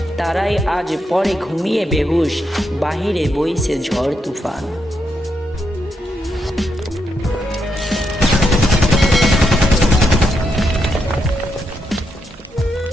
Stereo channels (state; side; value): normal; both; correlation 0.81